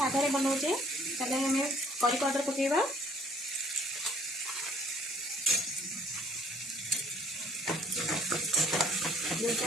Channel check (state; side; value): normal; both; correlation 0.60